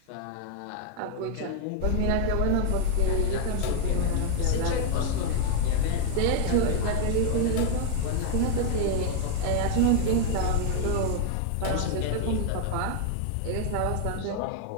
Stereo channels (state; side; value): different; both; correlation 0.00